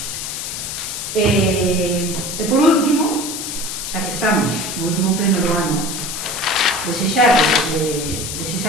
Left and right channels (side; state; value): left; noise; hiss, 5 dB below the sound